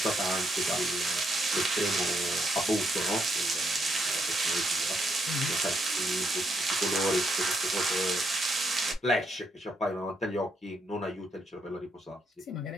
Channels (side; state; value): both; normal; correlation 0.77